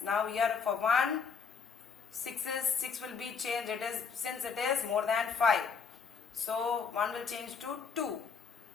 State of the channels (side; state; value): right; quieter; 5.9 dB